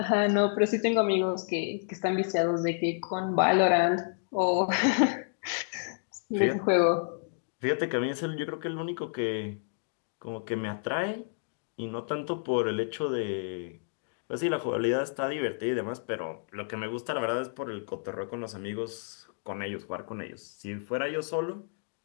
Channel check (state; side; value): silent; right; digital silence